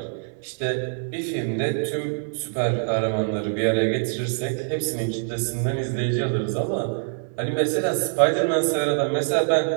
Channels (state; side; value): silent; left; 61 dB below the other